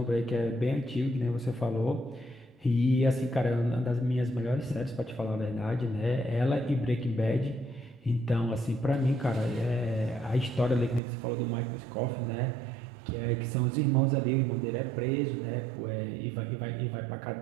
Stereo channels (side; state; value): left; drops out; at 11.0 s